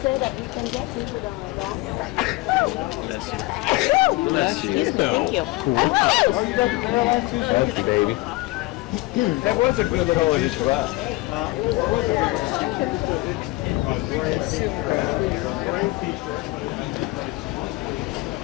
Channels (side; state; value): right; quieter; 20.8 dB